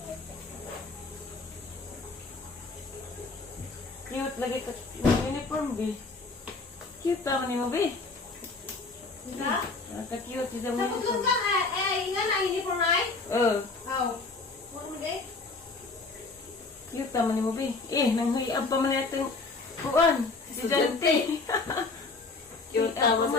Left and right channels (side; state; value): right; quieter; 3.8 dB